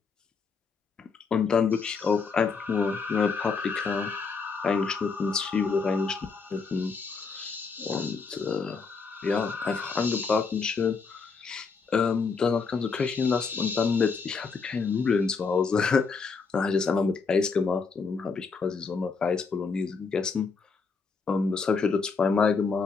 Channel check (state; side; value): quieter; right; 5.0 dB